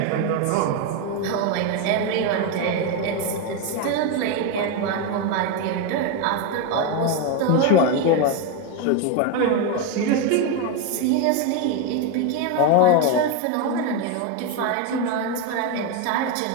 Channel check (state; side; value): different; both; correlation 0.02